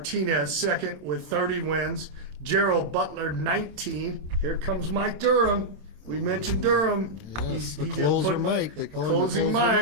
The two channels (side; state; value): left; late; 27 ms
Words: second with 30 wins. Gerald Butler 19. Here comes Mike Durham. We mentioned Durham. Yes, the closer Mike. They call him Closing